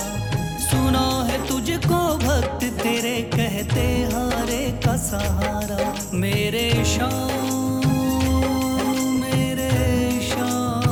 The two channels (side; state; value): both; identical; correlation 1.00